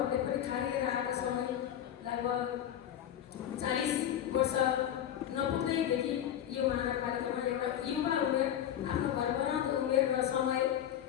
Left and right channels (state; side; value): quieter; right; 10.6 dB